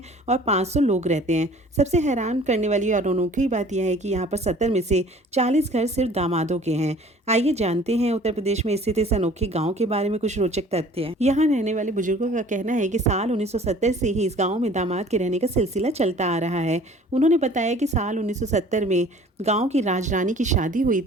और 500 लोग रहते हैं। सबसे हैरान करने वाली और अनोखी बात यह है कि यहाँ पर 70 में से 40 घर सिर्फ दामादों के हैं। आइए जानते हैं उत्तर प्रदेश में स्थित इस अनोखे गांव के बारे में कुछ रोचक तथ्य। यहाँ रहने वाले बुजुर्गों का कहना है कि साल 1970 से ही इस गांव में दामाद के रहने का सिलसिला चलता आ रहा है। उन्होंने बताया कि साल 1970 में गांव की राजरानी की शादी हुई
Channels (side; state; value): both; normal; correlation 0.50